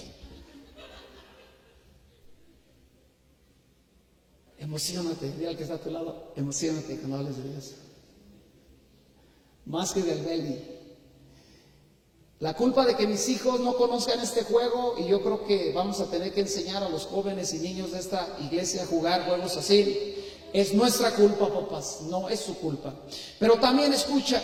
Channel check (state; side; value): identical; both; correlation 1.00